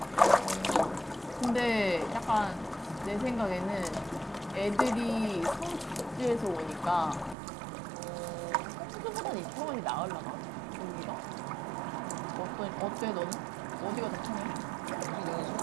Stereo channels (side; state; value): left; drops out; at 7.4 s